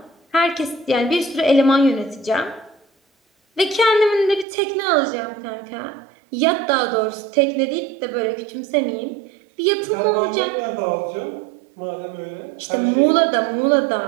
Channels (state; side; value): drops out; left; at 4.5 s